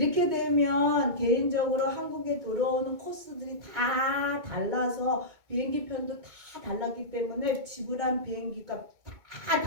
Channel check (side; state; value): left; late; 2.2 ms